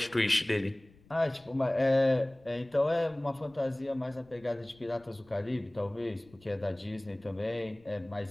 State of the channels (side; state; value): left; noise; rumble, 27 dB below the sound